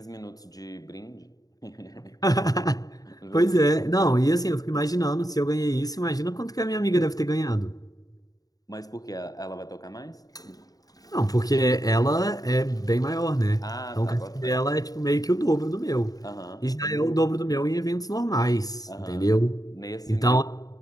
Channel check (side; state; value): right; late; 0.18 ms